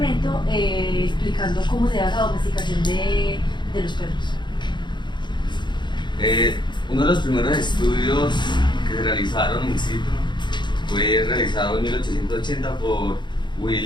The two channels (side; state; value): right; late; 0.22 ms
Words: explicando cómo se da la domesticación de los perros. Uno de los primeros estudios que se realizaron in situ fue realizado en 1880 por